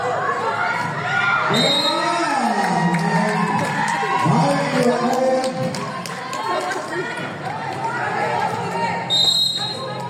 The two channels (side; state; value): both; identical; correlation 1.00